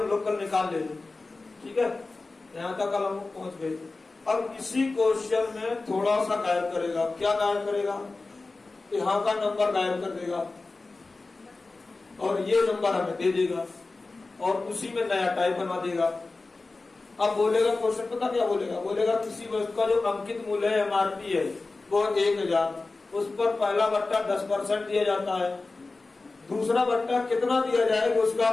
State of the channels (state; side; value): quieter; right; 3.5 dB